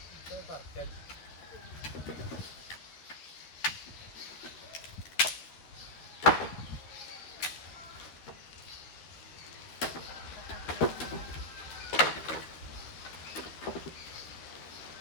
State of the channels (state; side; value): late; right; 13 ms